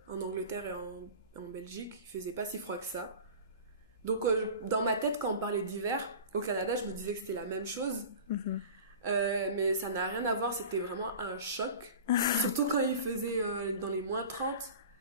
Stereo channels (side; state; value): both; inverted; correlation -0.36